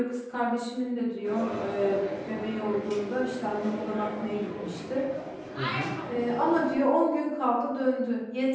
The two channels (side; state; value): both; identical; correlation 1.00